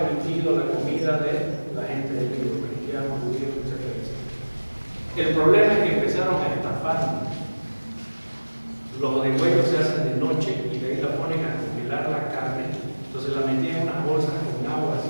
la comida de la gente del libro, cristianos, judíos, etc. El problema es que empezaron a estafar. Los degüellos se hacen de noche y de ahí la ponen a congelar la carne. Entonces la metían en unas bolsas con agua así,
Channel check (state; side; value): inverted; both; correlation -1.00